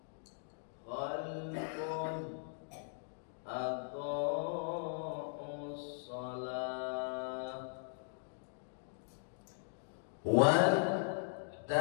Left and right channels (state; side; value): silent; right; digital silence